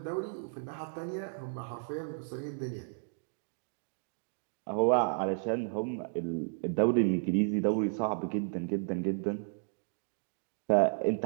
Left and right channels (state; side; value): silent; left; digital silence